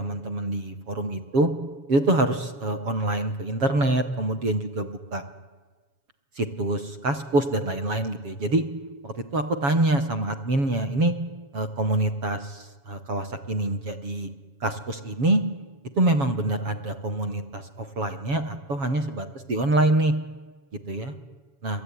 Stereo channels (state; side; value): late; left; 7.2 ms